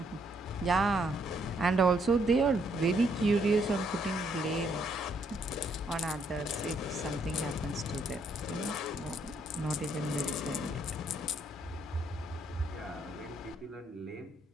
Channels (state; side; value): normal; both; correlation 0.71